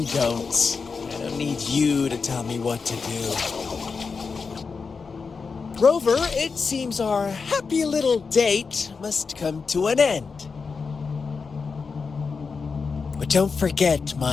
don'ts. I don't need you to tell me what to do. Rover, it seems our happy little date must come to an end. But don't forget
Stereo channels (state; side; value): quieter; right; 5.0 dB